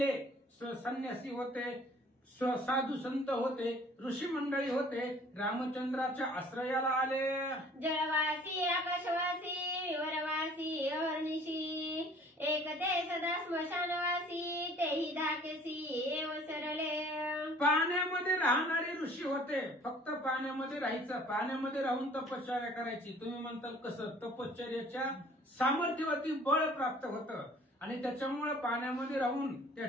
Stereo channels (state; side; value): normal; both; correlation 0.52